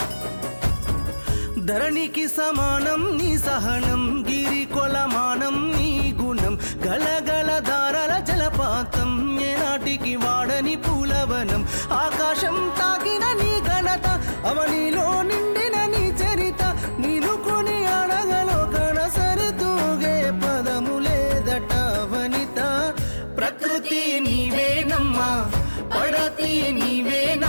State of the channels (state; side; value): inverted; both; correlation -1.00